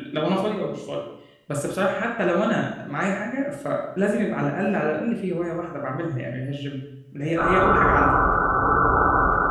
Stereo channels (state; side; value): identical; both; correlation 1.00